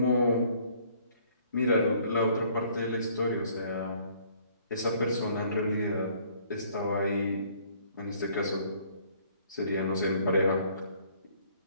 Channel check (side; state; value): both; inverted; correlation -0.61